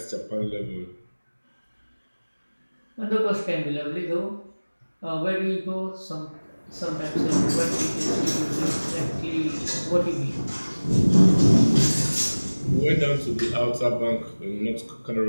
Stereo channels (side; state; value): both; inverted; correlation -1.00